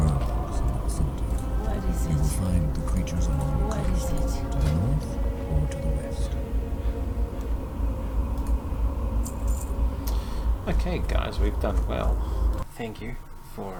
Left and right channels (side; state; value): both; identical; correlation 1.00